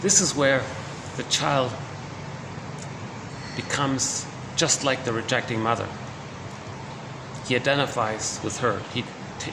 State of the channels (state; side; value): identical; both; correlation 1.00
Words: This is where the child becomes just like the rejecting mother. He identifies with her. He